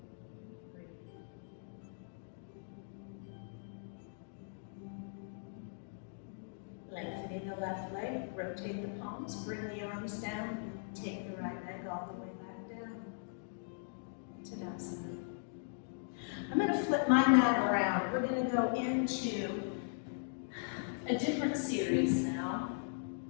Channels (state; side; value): silent; right; digital silence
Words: Breathe. Lengthening the left leg, rotate the palms, bring the arms down, take the right leg all the way back down. Tadasana. I'm going to flip my mat around. We're going to go into a different series now.